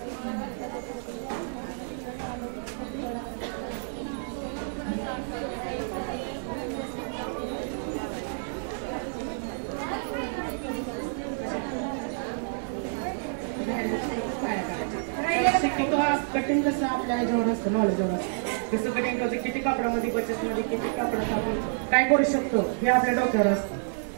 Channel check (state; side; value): silent; left; digital silence